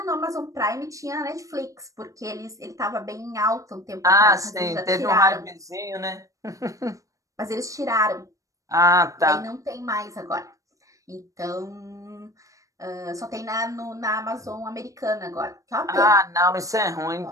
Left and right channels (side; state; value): left; late; 0.16 ms